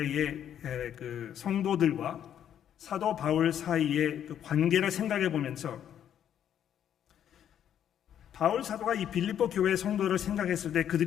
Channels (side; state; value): right; quieter; 9.8 dB